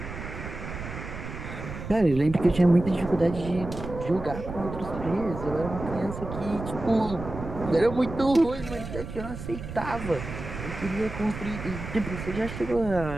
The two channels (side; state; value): right; noise; rumble, 9 dB below the sound